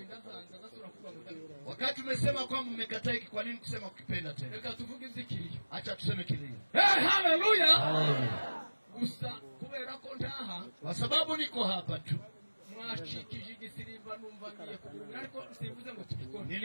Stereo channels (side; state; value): both; inverted; correlation -1.00